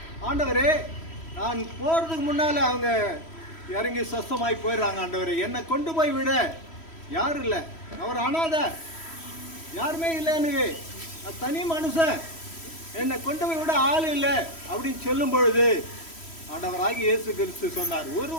ஆண்டவரே, நான் போறதுக்கு முன்னால அவங்க இறங்கி சொஸ்தமாய் போயிடுறாங்க. ஆண்டவரே, என்னை கொண்டு போய் விட யாரும் இல்லை, அவர் அனாதை, யாருமே இல்லை, எனக்கு நான் தனி மனுஷன், என்னை கொண்டு போய் விட ஆள் இல்லை அப்படின்னு சொல்லும் பொழுது ஆண்டவராகி இயேசு கிறிஸ்து சொன்னார், ஒரு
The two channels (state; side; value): late; right; 3.1 ms